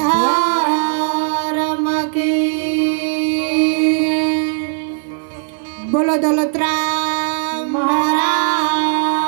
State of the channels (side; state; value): left; silent; 55 dB below the other